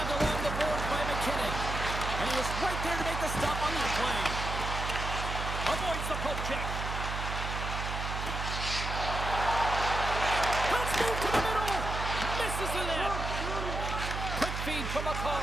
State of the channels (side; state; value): right; noise; hum, 4 dB below the sound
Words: along the boards by McKinnon. And he was right there to make the stop on the play. Avoids the poke check. Let's move to the middle. Misses the net. Quick feed from